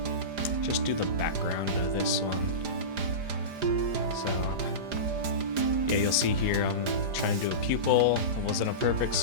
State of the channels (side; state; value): left; late; 4.9 ms